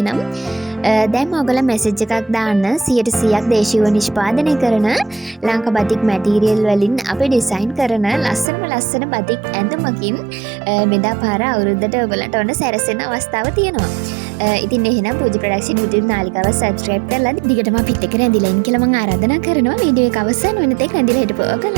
දැන් ඕගොල්ලන් මැසේජ් එකක් දාන්න 100%ක් දේශීයව නිෂ්පාදනය කරන ලංකා බතික් මැටීරියල් වලින් අපි ඩිසයින් කරන ලස්සන බතික් ඇඳුමකින් මෙදා පාර අවුරුද්දට ඔයගලන්ට ඔන්න සැරසෙන අවස්ථාව තියෙනවා. ඉතින් එහෙනම් පූජා ප්‍රොඩක්ෂන් YouTube නාලිකාව subscribe කරලා දිගටම අපිත් එක්ක රැඳිලා ඉන්න කියලා මම ආරාධනා කරනවා. වීඩියෝ එක අවසන් වෙන තෙක් රැඳිලා හිටපුවා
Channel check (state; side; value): drops out; left; at 8.5 s